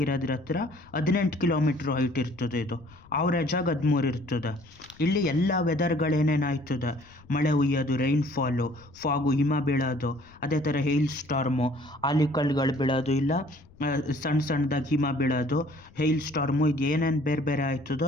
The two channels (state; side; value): noise; left; rumble, 25 dB below the sound